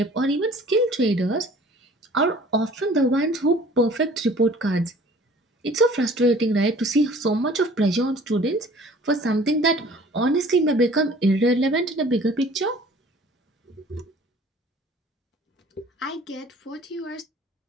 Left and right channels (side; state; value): both; normal; correlation 0.50